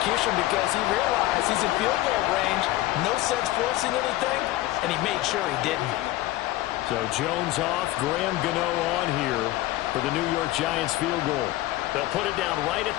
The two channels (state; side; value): quieter; right; 16.5 dB